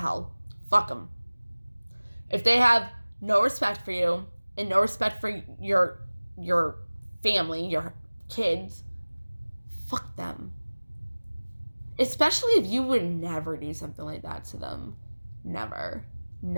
Fuck them. If they have no respect for you and no respect for your family, your kids, fuck them. Especially if you would never do something like that to them. Never.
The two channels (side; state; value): both; inverted; correlation -1.00